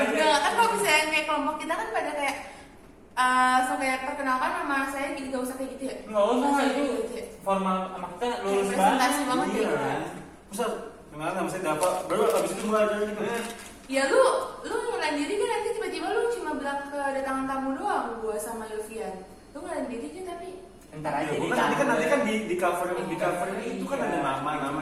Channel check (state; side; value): identical; both; correlation 1.00